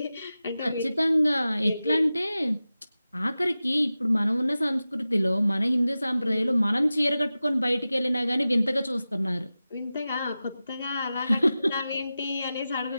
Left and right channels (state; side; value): inverted; both; correlation -0.95